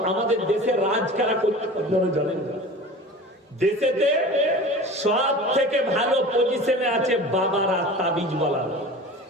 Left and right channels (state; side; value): normal; both; correlation 0.37